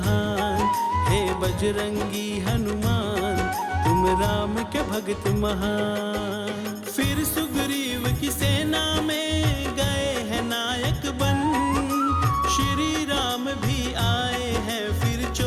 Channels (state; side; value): identical; both; correlation 1.00